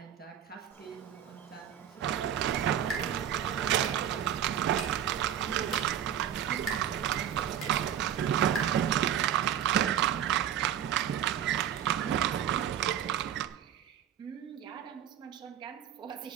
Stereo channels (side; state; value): left; quieter; 10.0 dB